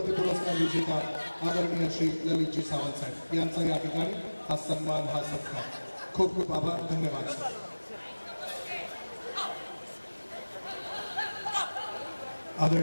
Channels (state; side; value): inverted; both; correlation -1.00